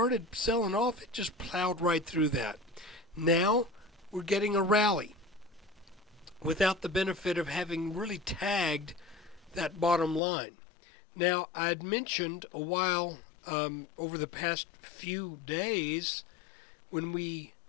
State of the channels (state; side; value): drops out; right; at 10.2 s